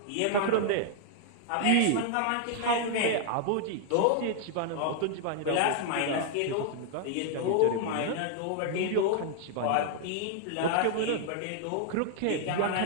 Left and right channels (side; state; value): both; different; correlation 0.00